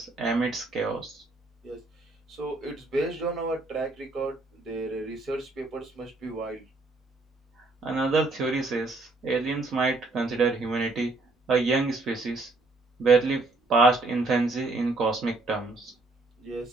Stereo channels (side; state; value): left; quieter; 3.2 dB